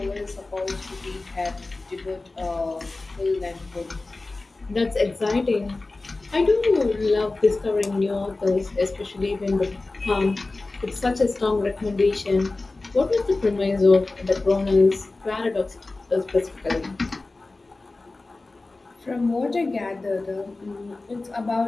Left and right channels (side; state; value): right; quieter; 3.3 dB